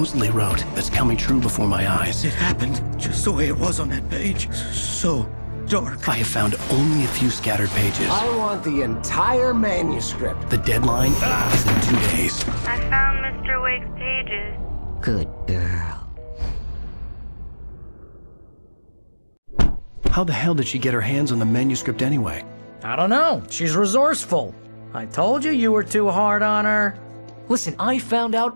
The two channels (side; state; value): both; inverted; correlation -1.00